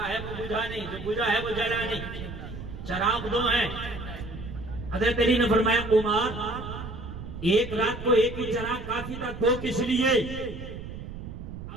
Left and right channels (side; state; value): right; noise; rumble, 10 dB below the sound